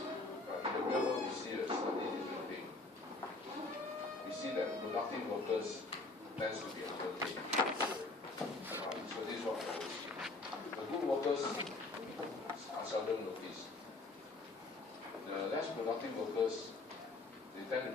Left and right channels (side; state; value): right; quieter; 3.3 dB